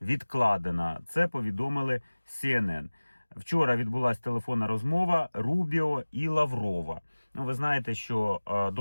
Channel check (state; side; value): inverted; both; correlation -1.00